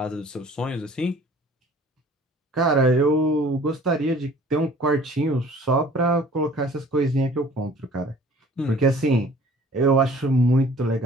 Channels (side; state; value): both; normal; correlation 0.51